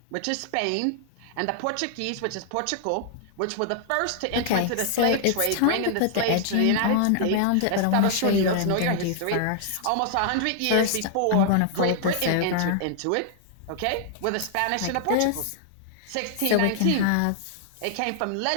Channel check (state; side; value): different; both; correlation 0.00